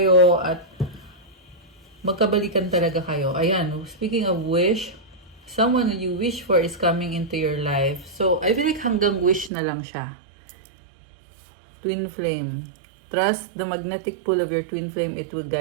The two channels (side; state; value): left; drops out; at 9.5 s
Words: at magkabalikan talaga kayo. Ayan, speaking of wish, someone that you wish for is coming into your life. So, I feel like hanggang wish na lang siya. Twin flame. Trust the magnetic pull of your twin flame. It will